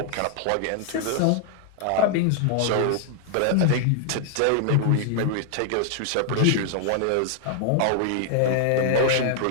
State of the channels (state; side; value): different; both; correlation 0.00